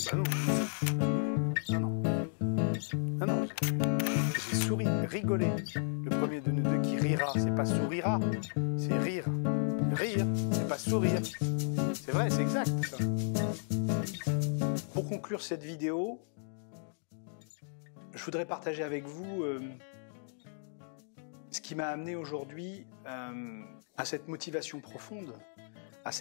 non. Non, non. Non, non. J'ai souri, rigolé. Le premier de nous deux qui rira, c'est pas sourira, c'est rire. Rire, c'est pas sourire. C'est vrai, c'est exact, ça. Pour conclure cette vidéo, je voudrais partager avec vous ce qui m'a amené aujourd'hui à cette motivation profonde, à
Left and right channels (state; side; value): silent; right; digital silence